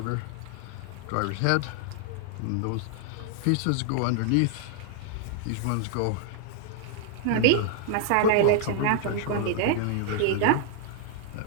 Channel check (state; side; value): different; both; correlation 0.00